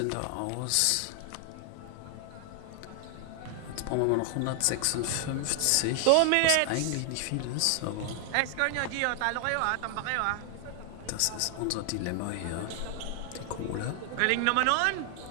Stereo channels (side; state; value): both; different; correlation 0.00